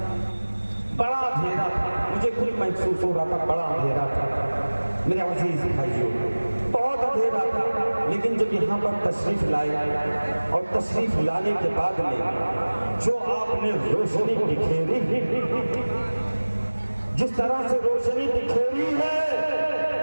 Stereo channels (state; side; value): inverted; both; correlation -1.00